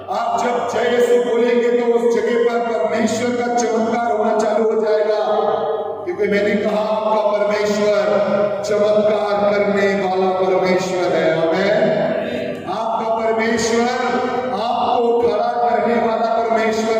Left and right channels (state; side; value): identical; both; correlation 1.00